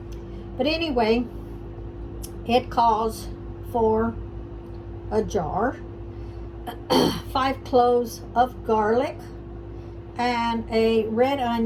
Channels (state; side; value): identical; both; correlation 1.00